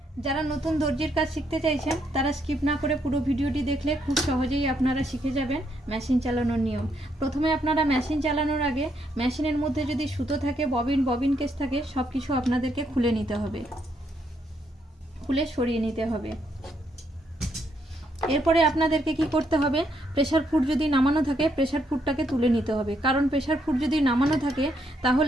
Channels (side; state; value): both; normal; correlation 0.75